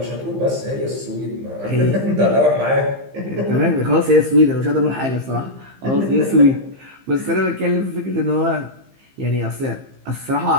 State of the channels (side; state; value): left; late; 15 ms